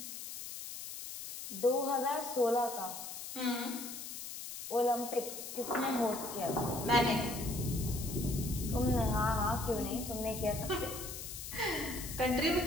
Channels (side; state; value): left; noise; hiss, 9 dB below the sound